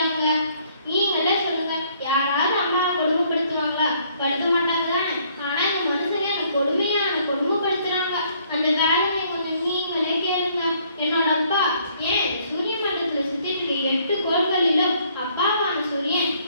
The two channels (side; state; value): both; inverted; correlation -0.64